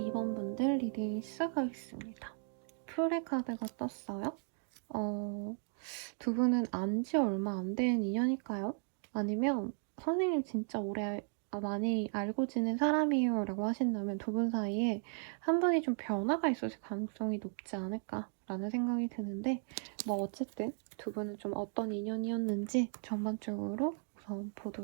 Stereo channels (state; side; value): silent; left; 54 dB below the other